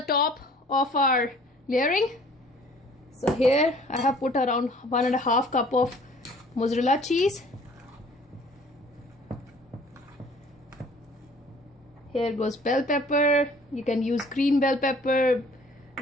top of our layering. So here I have put around 1.5 cup of mozzarella cheese. Here goes bell pepper. You can use green bell pepper,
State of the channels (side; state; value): both; normal; correlation 0.53